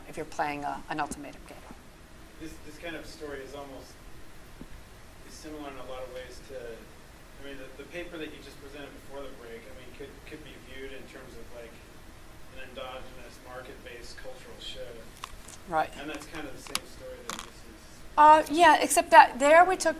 if you're playing an ultimatum game. This kind of story is almost similar in a lot of ways to, I mean, the paper that you just presented before the break, I mean, could be viewed in terms of like an endogenous market-based cultural shift. Right. And that's kind of the same story that this is. Yeah, except that there we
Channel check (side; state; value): both; identical; correlation 1.00